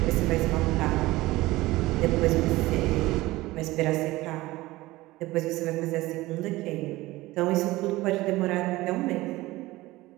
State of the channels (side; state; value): left; quieter; 18.8 dB